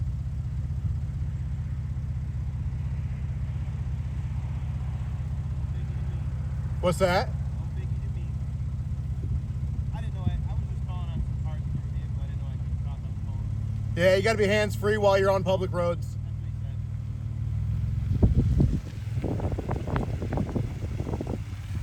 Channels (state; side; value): identical; both; correlation 1.00